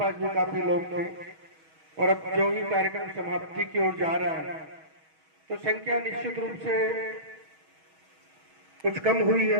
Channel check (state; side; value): late; left; 6.3 ms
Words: भी काफी लोग थे और अब जो भी कार्यक्रम समाप्ति की ओर जा रहा है तो संख्या निश्चित रूप से कुछ कम हुई